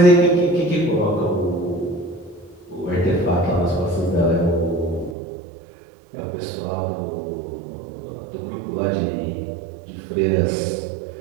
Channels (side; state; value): left; drops out; at 5.2 s